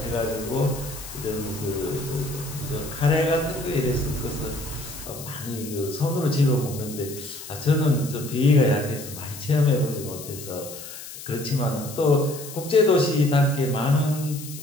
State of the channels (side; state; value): left; noise; hiss, 12 dB below the sound